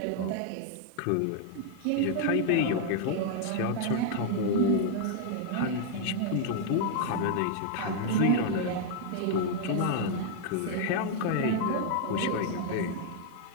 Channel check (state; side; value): different; both; correlation 0.00